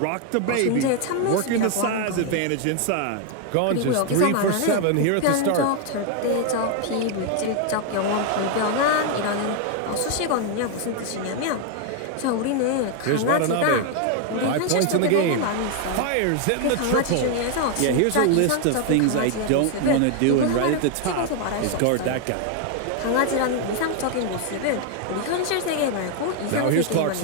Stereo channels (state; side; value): different; both; correlation 0.00